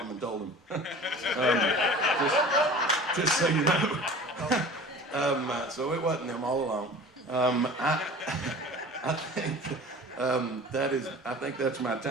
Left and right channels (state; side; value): normal; both; correlation 0.41